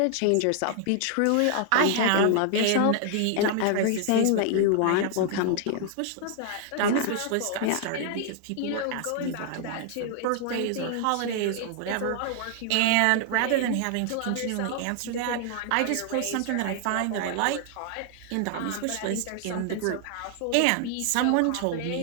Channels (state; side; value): different; both; correlation 0.00